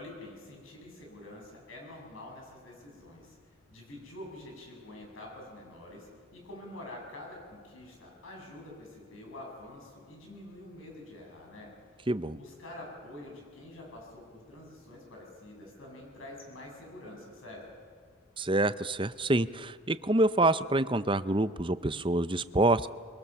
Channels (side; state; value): both; normal; correlation 0.49